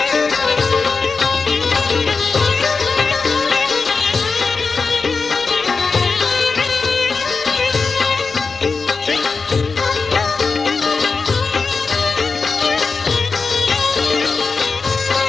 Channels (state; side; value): quieter; right; 4.6 dB